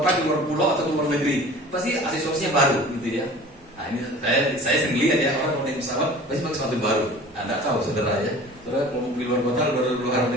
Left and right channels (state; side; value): normal; both; correlation 0.43